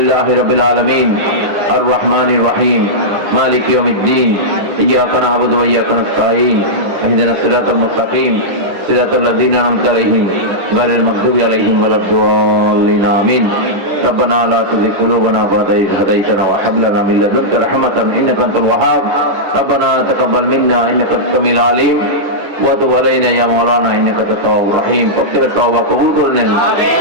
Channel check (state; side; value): late; left; 10 ms